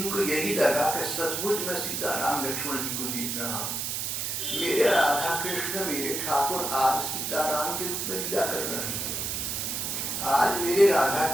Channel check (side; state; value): right; noise; hiss, 2 dB below the sound